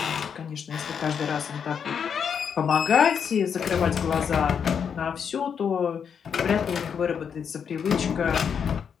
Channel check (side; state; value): right; quieter; 7.2 dB